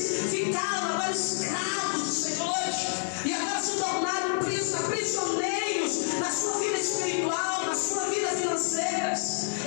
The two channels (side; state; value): right; silent; 59 dB below the other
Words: ficaram agora escravos dos senhores, e agora se tornaram prisioneiros na sua vida espiritual, na sua vida financeira.